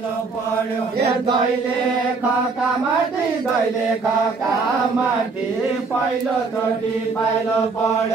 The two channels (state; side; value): quieter; left; 4.3 dB